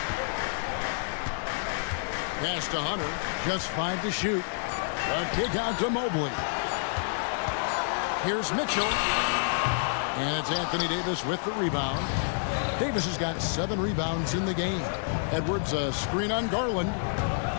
Pass to Hunter, just 5 to shoot. The kick out to Mobley. Here's Mitchell. And it's Anthony Davis with the rebound. Davis has got 7 rebounds in the game. Edwards a screen on Garland.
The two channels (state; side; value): silent; right; digital silence